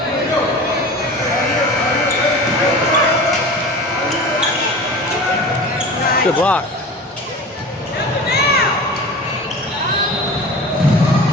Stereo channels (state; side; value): normal; both; correlation 0.36